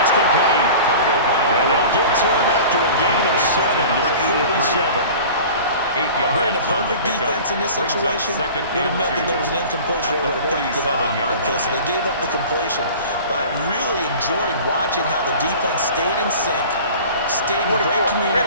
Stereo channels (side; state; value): both; inverted; correlation -0.40